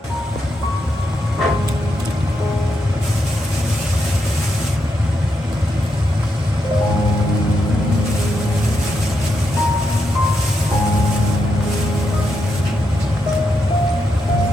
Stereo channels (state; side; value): normal; both; correlation 0.82